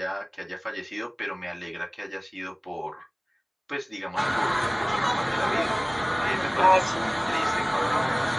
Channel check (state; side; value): identical; both; correlation 1.00